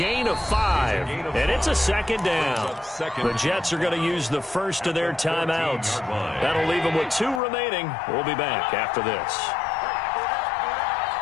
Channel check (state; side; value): drops out; right; at 7.4 s